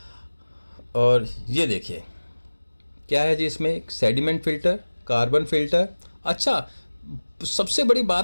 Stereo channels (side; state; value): both; inverted; correlation -1.00